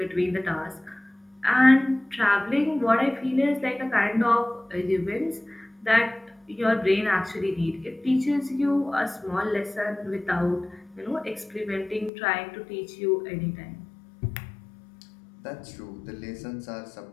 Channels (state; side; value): drops out; right; at 12.1 s